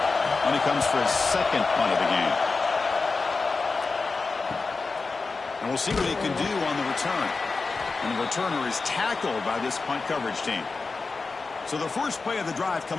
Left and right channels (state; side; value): quieter; right; 4.1 dB